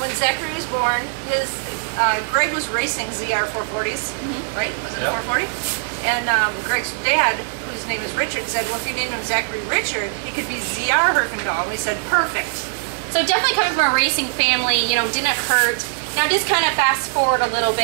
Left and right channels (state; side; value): silent; left; digital silence